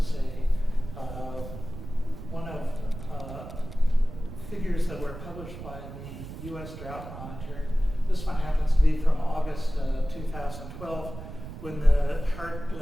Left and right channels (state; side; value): noise; right; rumble, 11 dB below the sound